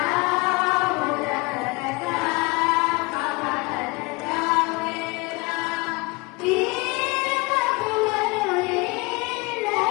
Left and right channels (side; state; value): right; quieter; 26.0 dB